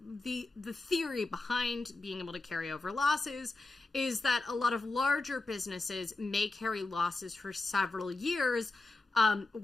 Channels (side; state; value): right; quieter; 3.3 dB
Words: theory behind being able to carry over losses is that a lot of larger businesses may carry losses for several years